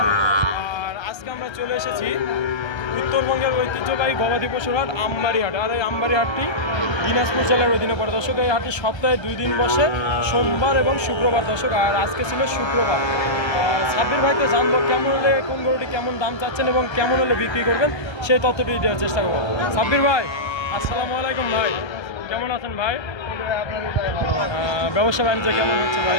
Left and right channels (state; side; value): late; right; 1.3 ms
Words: আর আজকে আমরা চলে এসেছি উত্তরবঙ্গের ঐতিহ্যবাহী গবাদি পশুর হাট আমবাড়ি হাট। আর এই আমবাড়ি হাটটি দিনাজপুর জেলার অধীনে পড়ে দর্শক। এই হাটটি সপ্তাহে 2 দিন বসে, সোমবার এবং শুক্রবার দর্শক। আর আজকে ছিল শুক্রবার। সাব্বির ভাইকে জানবো কেমন হলে কোন গরুটি কেমন দাম চাচ্ছেন এবং কেমন হলে বিক্রি করবেন সেই তথ্যটি দেওয়ার চেষ্টা করবো। সাব্বির ভাই আসসালামু আলাইকুম ভাই, কেমন আছেন ভাই? ব্যবসা বাণিজ্য কেমন হচ্ছে ভাই?